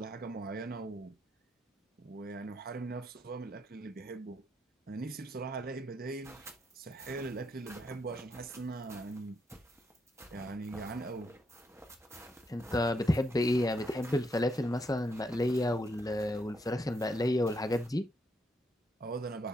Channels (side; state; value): both; normal; correlation 0.77